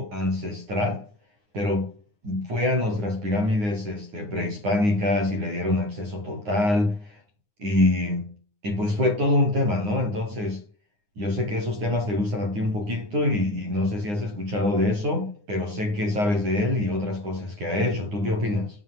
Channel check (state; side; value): late; left; 9.7 ms